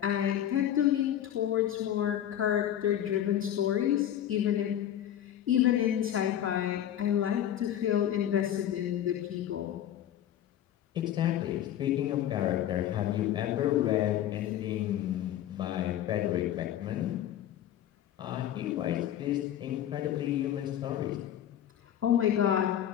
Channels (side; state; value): right; quieter; 11.2 dB